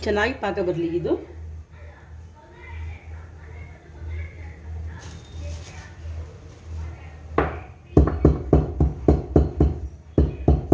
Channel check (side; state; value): both; identical; correlation 1.00